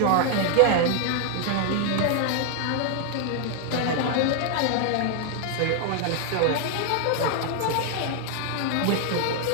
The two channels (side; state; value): both; different; correlation 0.00